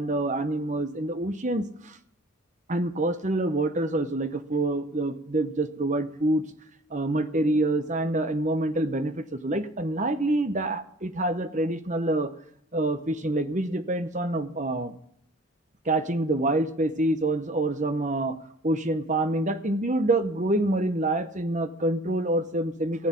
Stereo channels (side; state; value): both; normal; correlation 0.48